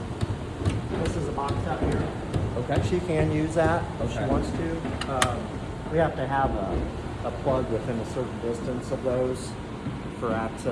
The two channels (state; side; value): identical; both; correlation 1.00